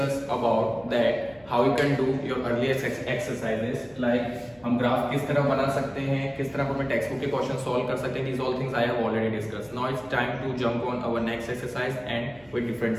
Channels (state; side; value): noise; right; hum, 29 dB below the sound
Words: about that how you can do your earlier exercises, like हम graph किस तरह बना सकते हैं, किस तरह हमें text book के क्वेश्चन सॉल्व कर सकते हैं. These all things I have already discussed. Now it's time to jump on our next exercise and with different